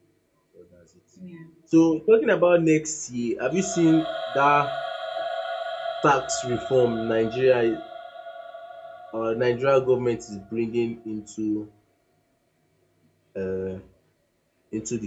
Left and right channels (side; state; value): both; identical; correlation 1.00